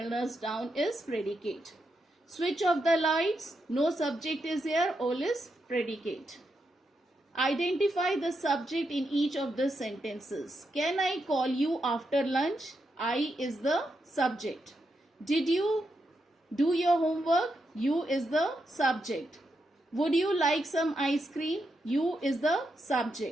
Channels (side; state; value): both; normal; correlation 0.83